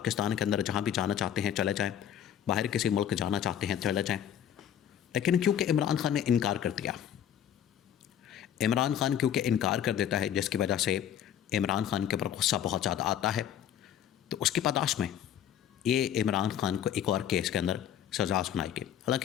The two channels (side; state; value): right; quieter; 10.0 dB